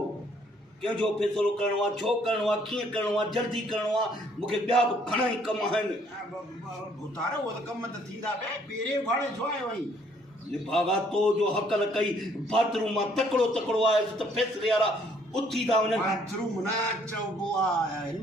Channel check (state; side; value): normal; both; correlation 0.64